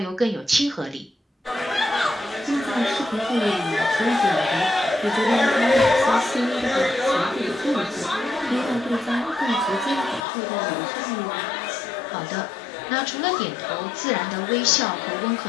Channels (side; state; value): right; drops out; at 10.2 s